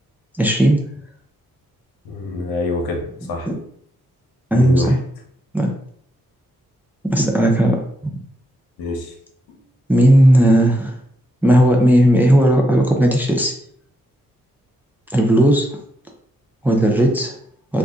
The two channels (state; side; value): normal; both; correlation 0.81